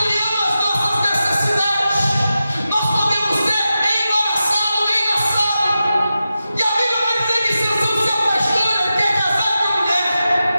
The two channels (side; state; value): both; inverted; correlation -0.91